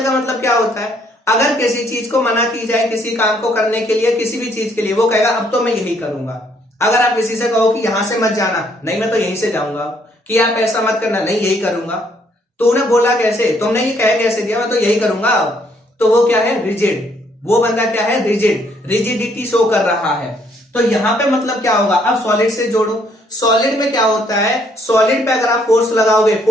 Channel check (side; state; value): both; normal; correlation 0.68